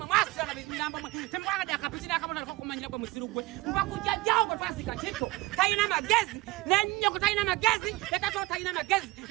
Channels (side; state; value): left; quieter; 20.2 dB